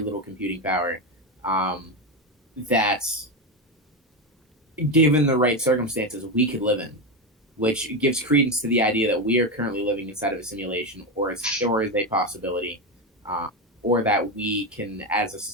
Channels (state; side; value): normal; both; correlation 0.13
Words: computing power. That, given the right circumstances, we could live in, which gives credence to the idea that we are currently living inside of a simulation, or is a possibility, or that we can, as a